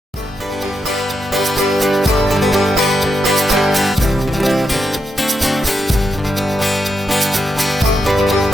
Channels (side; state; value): both; normal; correlation 0.84